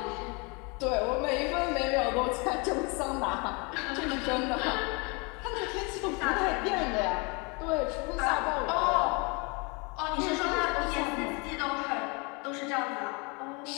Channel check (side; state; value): right; quieter; 30.3 dB